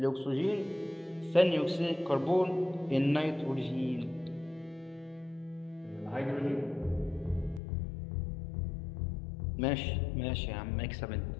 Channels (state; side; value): drops out; right; at 7.6 s